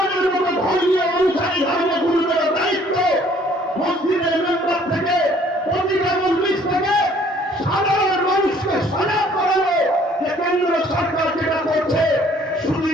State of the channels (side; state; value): both; normal; correlation 0.59